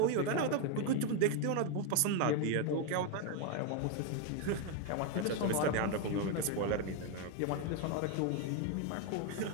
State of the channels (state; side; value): different; both; correlation 0.01